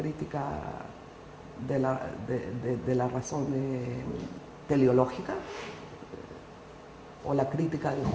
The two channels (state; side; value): identical; both; correlation 1.00